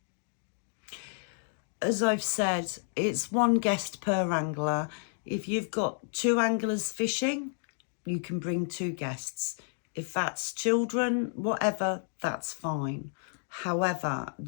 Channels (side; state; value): right; silent; 57 dB below the other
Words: As I've said, it's 1 guest per angler. If you've got 2 anglers fishing, you can bring 2 guests. If that's children, whatever, that's fine. However,